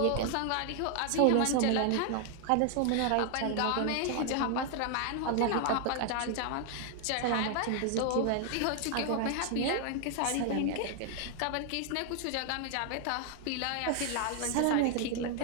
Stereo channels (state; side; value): different; both; correlation 0.00